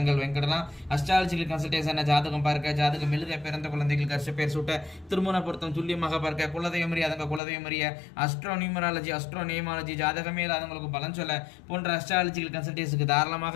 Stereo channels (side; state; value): right; drops out; at 7.4 s